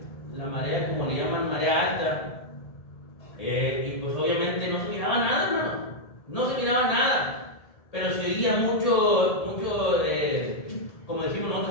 la marea, como le llaman, marea alta. Y pues obviamente no se miraba nada, hermano. No se miraba nada. Pero se oía mucho, como decimos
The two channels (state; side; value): late; right; 1.7 ms